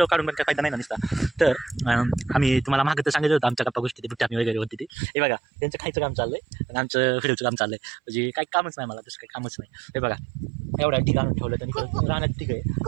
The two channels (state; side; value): drops out; left; at 4.9 s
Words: काढून पण काय फायदा नाही ना नसता. तर आम्ही तुम्हाला मागं तर सांगितलं होतं आमच्या गप्पा गोष्टी ते बुट्टाणी वगैरे होती ती. हे बघा त्यांचं खायचं काम चाललंय आणि आमचं व्हिडिओचं काम चाललंय. म्हणजे काही कामच नाही मला, दुसरं काही कामच नाही. हे बघा एवढा ढिग आणून ठेवलं त्यांनी राहण्यात. ठीक आहे,